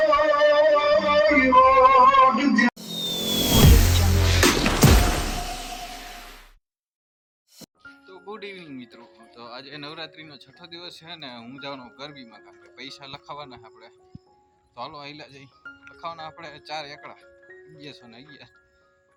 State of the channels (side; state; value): both; identical; correlation 1.00